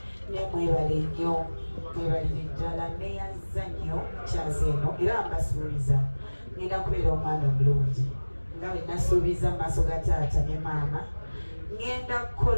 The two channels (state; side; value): inverted; both; correlation -1.00